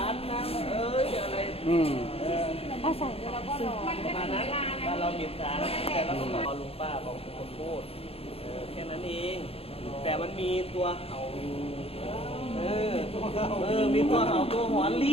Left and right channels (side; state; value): right; late; 0.28 ms